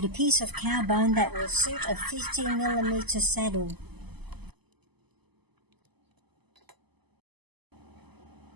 a piece of cow bone that will suit a 50mm saddle.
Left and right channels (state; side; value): late; left; 0.99 ms